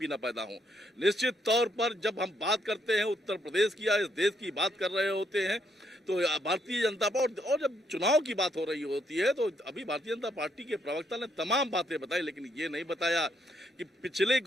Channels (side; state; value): both; normal; correlation 0.74